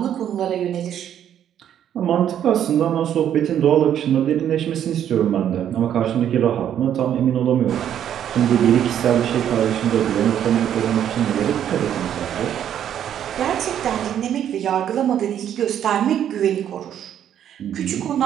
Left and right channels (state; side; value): quieter; left; 10.0 dB